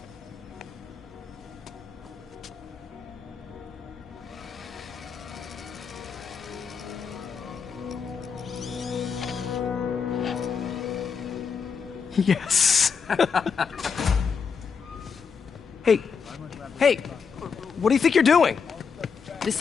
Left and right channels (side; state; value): right; quieter; 6.0 dB